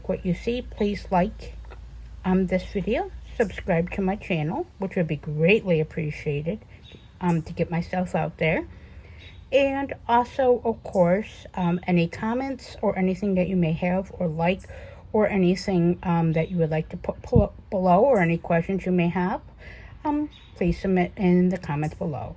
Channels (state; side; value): identical; both; correlation 1.00